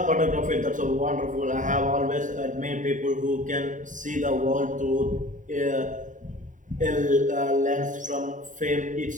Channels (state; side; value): late; left; 0.37 ms